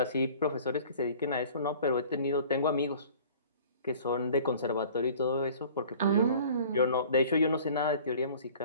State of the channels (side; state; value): both; inverted; correlation -0.48